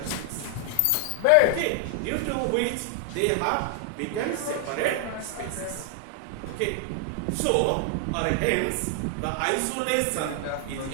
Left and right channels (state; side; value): different; both; correlation 0.00